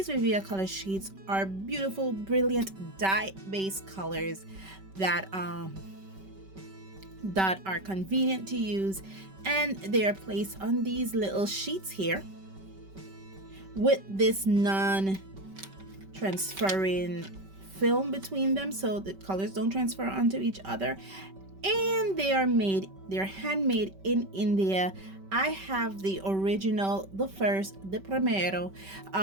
Viviva color sheets are beautiful, brilliant dye-based colors that are convenient to use, and they are placed on these little sheets here with this non-transferring film between them so the colors don't transfer onto each other. And they're handmade in India. I have the original, the primero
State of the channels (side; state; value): left; late; 5.2 ms